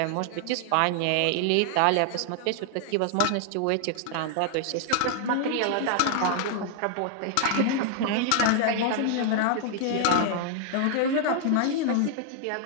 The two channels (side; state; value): both; different; correlation -0.01